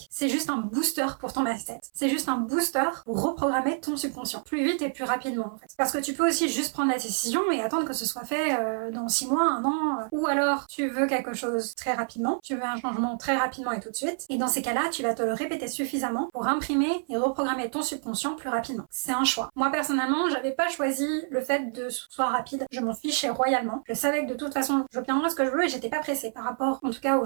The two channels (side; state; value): left; silent; 60 dB below the other